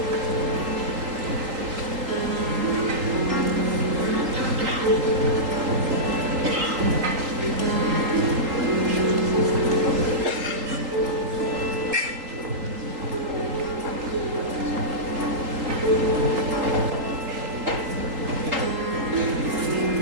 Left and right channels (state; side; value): late; left; 3.8 ms